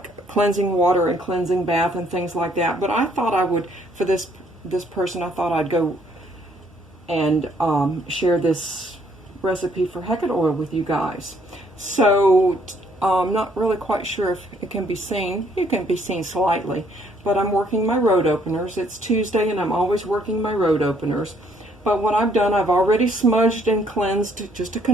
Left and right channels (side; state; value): both; normal; correlation 0.66